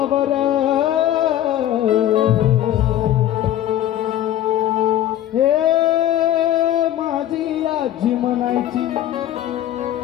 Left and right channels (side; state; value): right; quieter; 12.1 dB